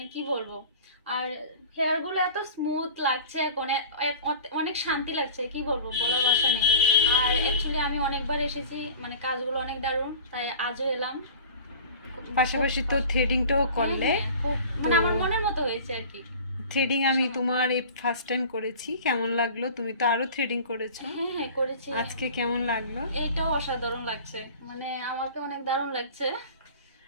কি বলবো। আর হেয়ার গুলো এত স্মুথ লাগছে এখন, অনেক শান্তি লাগছে, কি বলবো, বলার ভাষা নেই। আর অ্যাকচুয়ালি আমি অনেকবার এসেছি, মানে কাজগুলো অনেক দারুণ, তাই আজও এলাম। খুব পাশাপাশি তো থ্রেডিংটাও হ্যাঁ করলে। হ্যাঁ, খুব তো মানে আমার মনের মতো হয়েছে আর কি। থ্রেডিং আমি আশা মতো। তোমার এই ফার্স্ট টাইম করেছি, কেমন লাগলো? তুমি তো আরো থ্রেডিং করেছো, হ্যাঁ হ্যাঁ করেছি। আজকে কেমন লাগলো? এইটাও অসাধারণ লাগছে, মানে আমাকে অনেক দারুণ লাগছে।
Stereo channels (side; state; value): both; inverted; correlation -0.40